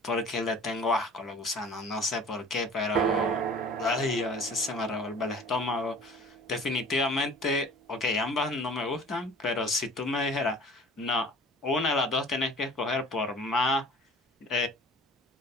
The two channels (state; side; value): normal; both; correlation 0.45